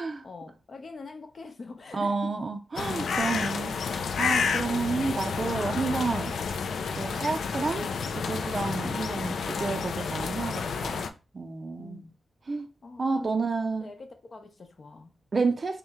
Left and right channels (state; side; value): normal; both; correlation 0.83